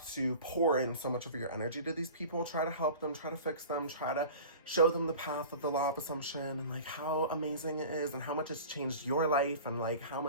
to pour in so much of your energy to these people. Try to help them, try to fix them, try to show them the path of the law of assumption and like how amazing it is and how much it's changed your life and like how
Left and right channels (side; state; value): both; inverted; correlation -0.38